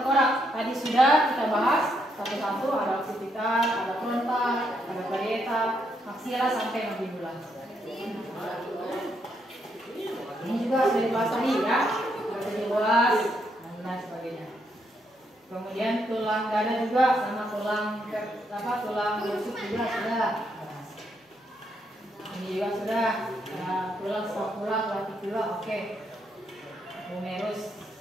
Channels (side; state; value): both; normal; correlation 0.76